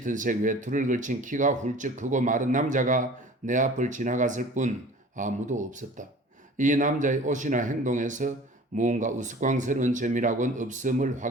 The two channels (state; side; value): normal; both; correlation 0.44